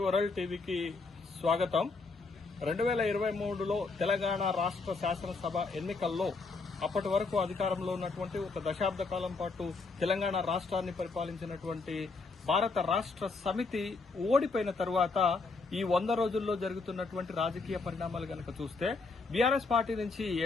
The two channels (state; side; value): quieter; right; 4.0 dB